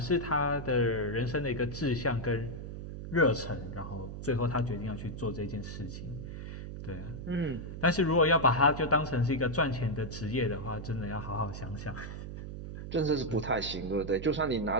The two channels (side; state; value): right; noise; hum, 8 dB below the sound